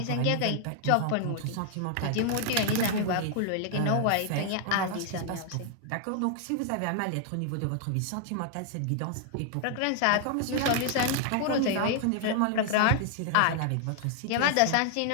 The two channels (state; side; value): different; both; correlation 0.00